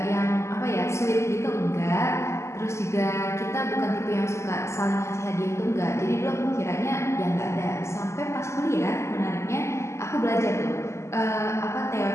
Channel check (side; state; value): right; late; 0.13 ms